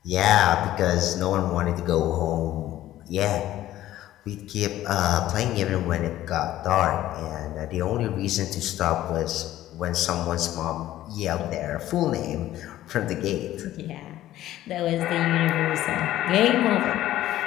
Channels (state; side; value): quieter; right; 13.9 dB